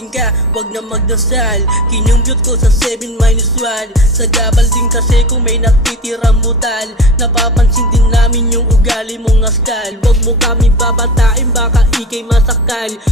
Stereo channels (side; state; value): both; normal; correlation 0.32